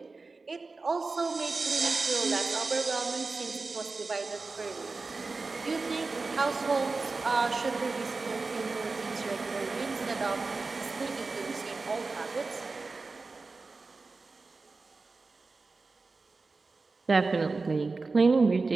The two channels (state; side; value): quieter; left; 3.9 dB